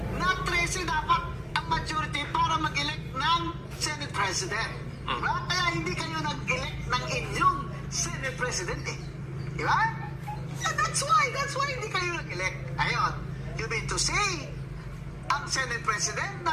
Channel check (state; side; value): identical; both; correlation 1.00